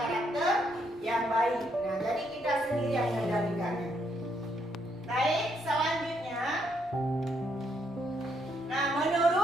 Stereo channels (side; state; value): both; normal; correlation 0.74